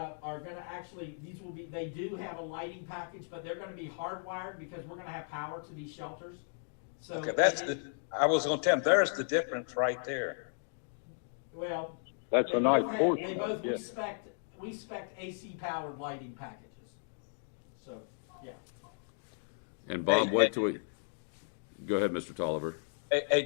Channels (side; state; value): right; silent; digital silence